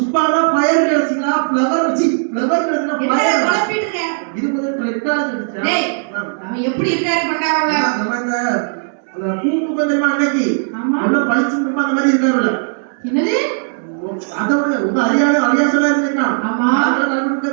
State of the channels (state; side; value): silent; left; 68 dB below the other